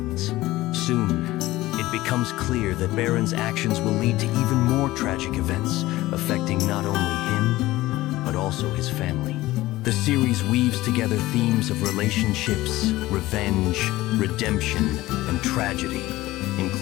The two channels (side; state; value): right; quieter; 17.5 dB